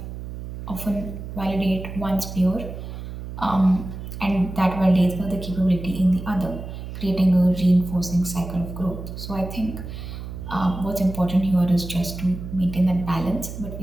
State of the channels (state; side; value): noise; right; hum, 9 dB below the sound